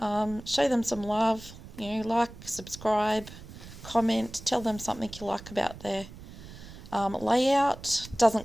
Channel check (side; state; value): right; noise; rumble, 15 dB below the sound